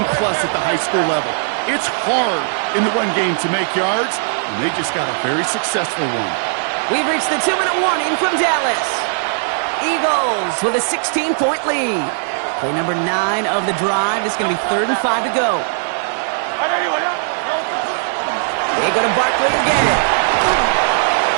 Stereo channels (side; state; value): left; silent; digital silence